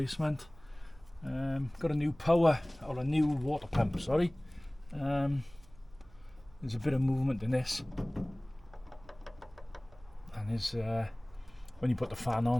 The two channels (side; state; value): right; noise; hum, 25 dB below the sound